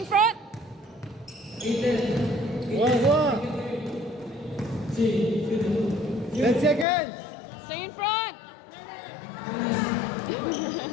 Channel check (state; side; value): drops out; right; at 6.9 s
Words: 10 seconds. Stay in front!